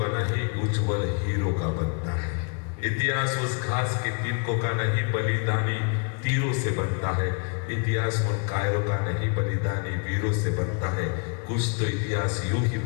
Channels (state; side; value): quieter; right; 37.0 dB